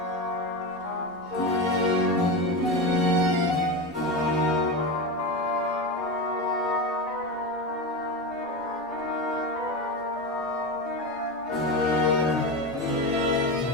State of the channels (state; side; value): normal; both; correlation 0.19